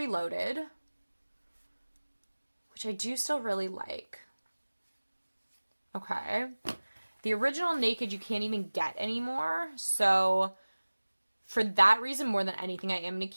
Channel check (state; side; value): inverted; both; correlation -1.00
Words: which I do still really like. Okay. The original Naked you can't even get anymore. So for that reason, more than anything, I am going to